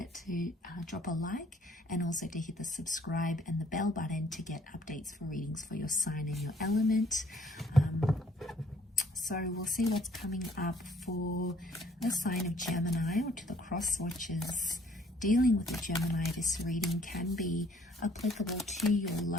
to drop a like and also to hit the subscribe and the bell button to get updates for readings for your sign and your element. So we'll see what's coming up for the sign of Gemini, or to the cross watchers dealing with the Gemini. This reading can be applicable to your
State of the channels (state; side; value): normal; both; correlation 0.61